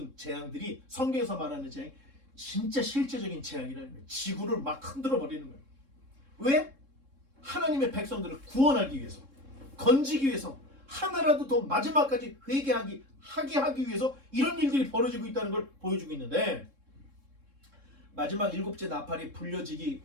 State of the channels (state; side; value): late; left; 3.7 ms